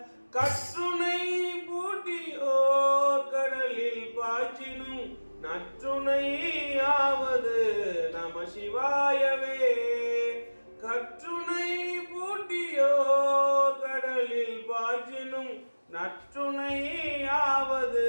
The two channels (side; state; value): both; inverted; correlation -1.00